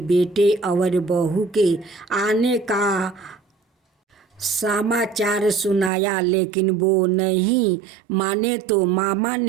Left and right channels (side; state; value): left; drops out; at 5.9 s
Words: बेटे और बहू के आने का समाचार सुनाया, लेकिन वो नहीं माने तो मामा